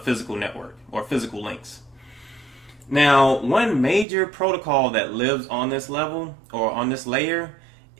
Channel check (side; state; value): left; drops out; at 4.0 s